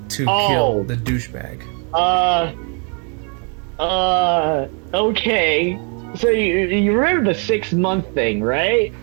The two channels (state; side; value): quieter; left; 38.8 dB